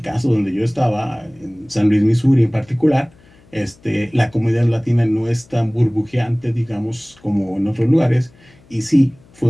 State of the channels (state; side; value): noise; left; hum, 28 dB below the sound